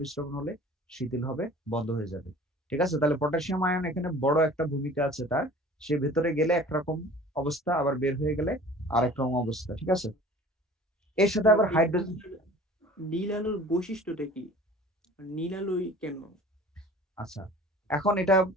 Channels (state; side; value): normal; both; correlation 0.45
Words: হলে শিথিল হবে, বন্ধ হয়ে যাবে। ঠিক আছে? তাহলে পটাশিয়াম আয়ন এখানে বড় একটা ভূমিকা আছে তার। সে ভেতরে গেলে একরকম অবস্থা, আবার বের হয়ে গেলে আরেক রকম অবস্থা। ঠিক আছে? এর সাথে আবার হাইড্রোজেন। নীল আলোর বৈশিষ্ট্যটা কি? নীল আলোই কেন? আচ্ছা, এখন এটা